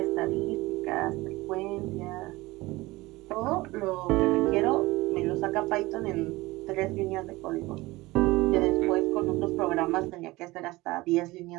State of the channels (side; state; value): left; quieter; 20.4 dB